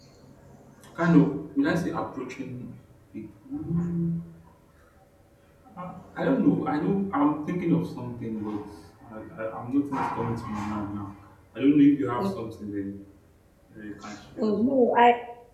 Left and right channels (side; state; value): both; identical; correlation 1.00